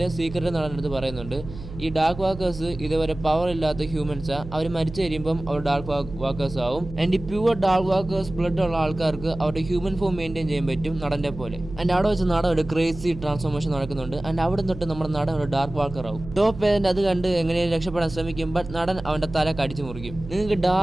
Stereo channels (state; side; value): noise; right; hum, 12 dB below the sound